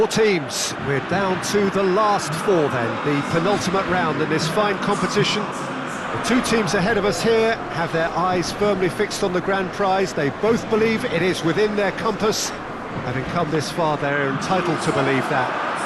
teams. We're down to the last four then, the penultimate round in this fine competition. The two teams ahead of us here have their eyes firmly fixed on the grand prize. They both believe it is within their compass. Having come this far, they're entitled to believe that.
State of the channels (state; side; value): identical; both; correlation 1.00